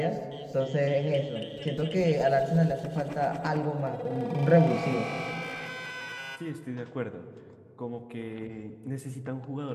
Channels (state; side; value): identical; both; correlation 1.00